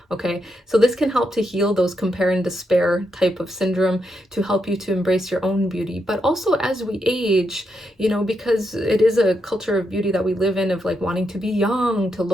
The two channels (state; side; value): normal; both; correlation 0.82